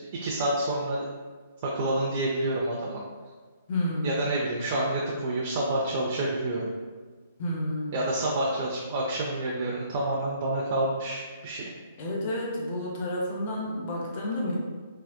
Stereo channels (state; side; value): inverted; both; correlation -0.60